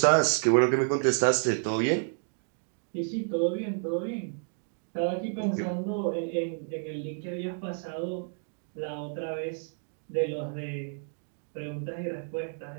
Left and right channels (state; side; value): silent; left; 58 dB below the other